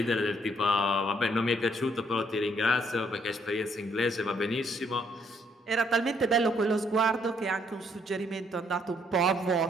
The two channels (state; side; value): normal; both; correlation 0.69